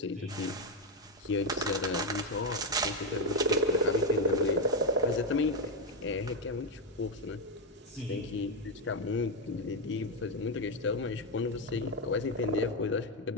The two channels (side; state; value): both; normal; correlation 0.05